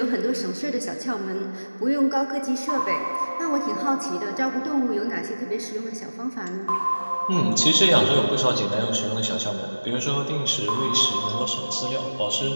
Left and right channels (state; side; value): inverted; both; correlation -1.00